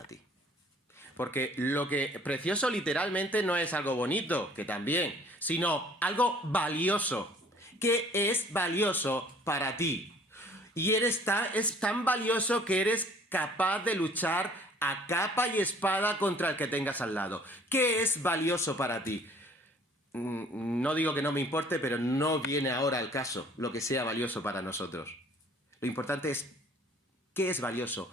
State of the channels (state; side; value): normal; both; correlation 0.55